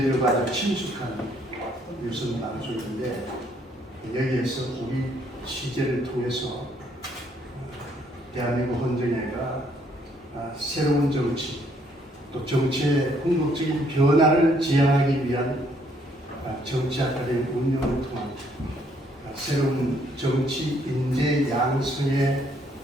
아주 친숙한 유선방송인데 여기에서 우리 취재를 통해서 대한민국 헌정회가 새로운 정치 또 정치의 궁극적인 변화를 지향하기 위한 정치 아카데미 운영을 통한 새로운 정치 인재 양성의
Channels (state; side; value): normal; both; correlation 0.68